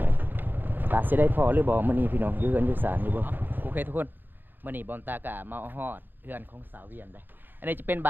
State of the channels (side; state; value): left; late; 0.093 ms